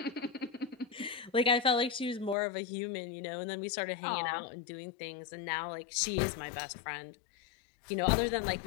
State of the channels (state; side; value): drops out; right; at 2.4 s